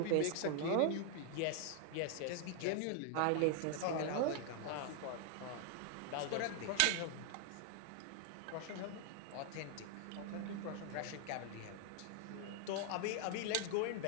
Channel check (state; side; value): different; both; correlation 0.00